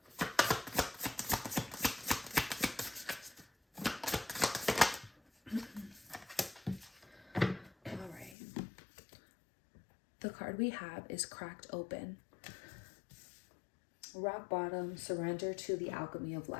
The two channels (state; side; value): drops out; right; at 8.3 s